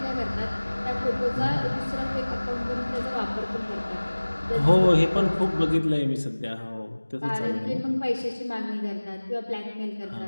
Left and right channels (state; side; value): inverted; both; correlation -1.00